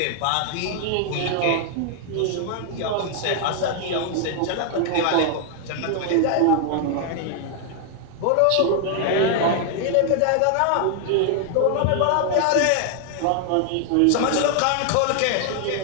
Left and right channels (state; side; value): different; both; correlation 0.00